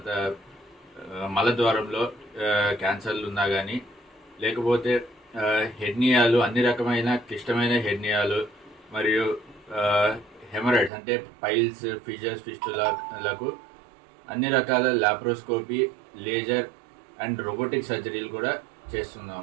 మలద్వారంలో క్యాన్సర్లు ఉన్నా కానీ, లేకపోతే హెర్నియాలు, అన్ని రకమైన క్లిష్టమైన హెర్నియాలు, మరియు హెమరాయిడ్స్ అంటే పైల్స్, ఫిషర్స్, ఫిస్టులకు అన్ని రకాల లాప్రోస్కోపీ, లేజర్ అండ్ రోబోటిక్ సర్జరీలు కూడా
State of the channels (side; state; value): left; drops out; at 10.9 s